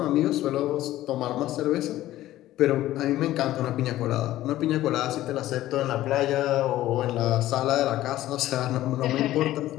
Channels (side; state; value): right; quieter; 14.7 dB